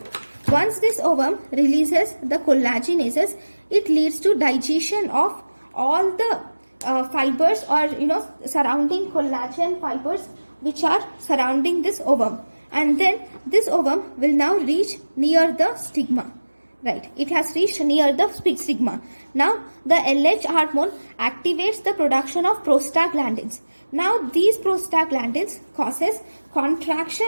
Once this ovum releases the collagenases, it leads to digestion of all the fibers, or surrounding collagen fibers which are surrounding this ovum, and then this ovum will now reach near the stigma. Right, it has reached near the stigma. Now the LH hormone activates the production of prostaglandins. Now these prostaglandins causes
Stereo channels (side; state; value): both; inverted; correlation -1.00